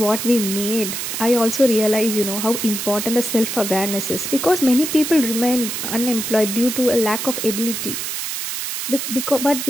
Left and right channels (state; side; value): noise; right; hiss, 4 dB below the sound